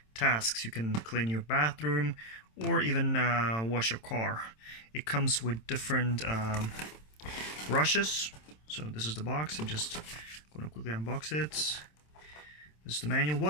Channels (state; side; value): late; right; 27 ms